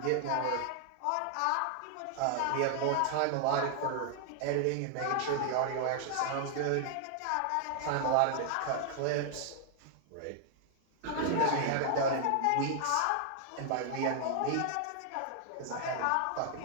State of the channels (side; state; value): both; different; correlation 0.00